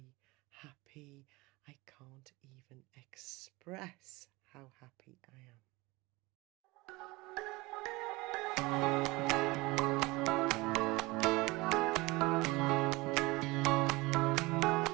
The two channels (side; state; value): left; quieter; 22.7 dB